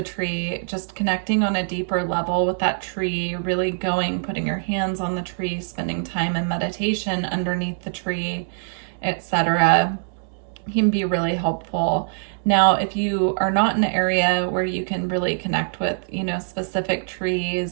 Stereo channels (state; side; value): silent; left; digital silence